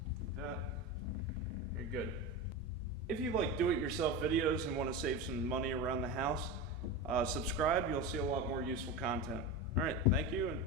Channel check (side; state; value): both; normal; correlation 0.23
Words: That. You're good. If you like do-it-yourself videos and want to save some money around the house, subscribe. You'll see a lot more useful content. All right, thank you and